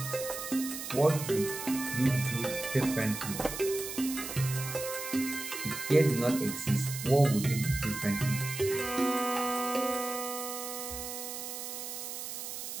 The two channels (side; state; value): right; noise; hiss, 7 dB below the sound